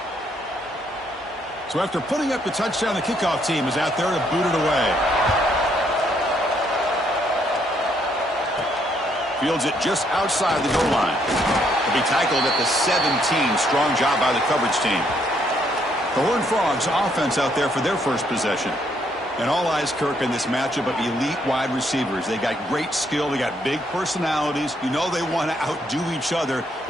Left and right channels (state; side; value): normal; both; correlation 0.71